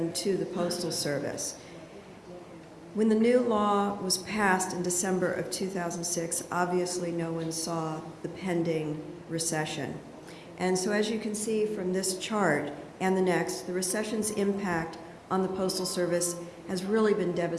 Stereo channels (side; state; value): both; identical; correlation 1.00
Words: to the Postal Service. When the new law was passed in December of 2006, obviously no one saw the pending recession. And so as you can see from this chart and the next, the recession's impact on the Postal Service has really been